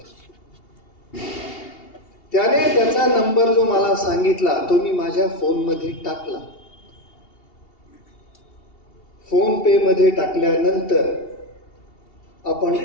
त्याने त्याचा नंबर जो मला सांगितला तो मी माझ्या फोनमध्ये टाकला. फोन पे मध्ये टाकल्यानंतर आपण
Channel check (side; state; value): right; late; 2.8 ms